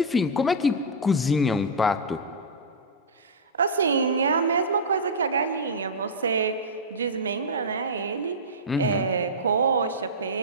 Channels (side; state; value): both; normal; correlation -0.09